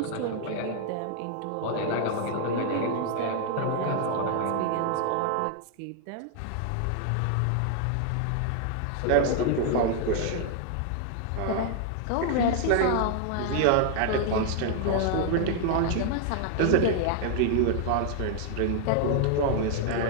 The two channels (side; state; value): both; different; correlation 0.00